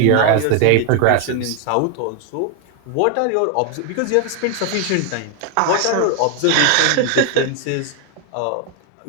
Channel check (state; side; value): different; both; correlation 0.01